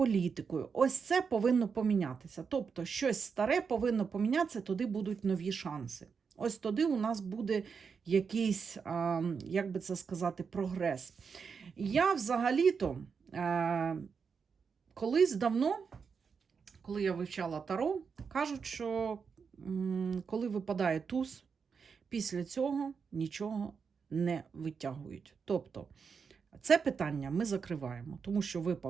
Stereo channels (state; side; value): quieter; left; 5.9 dB